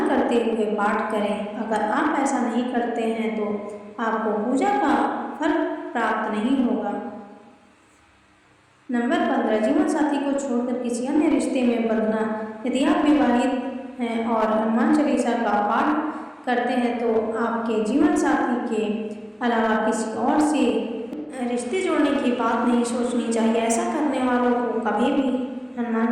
करते हुए पाठ करें। अगर आप ऐसा नहीं करते हैं तो आपको पूजा का फल प्राप्त नहीं होगा। नंबर 15, जीवन साथी को छोड़कर किसी अन्य रिश्ते में बंधना। यदि आप विवाहित हैं और हनुमान चालीसा का पाठ करते हैं तो आपके जीवन साथी के अलावा किसी और से रिश्ते जोड़ने की बात नहीं सोचनी चाहिए। ऐसा करने वालों को कभी भी हनुमान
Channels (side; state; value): both; identical; correlation 1.00